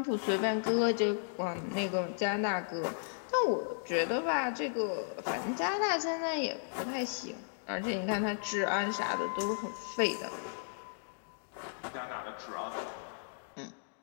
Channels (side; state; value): right; silent; digital silence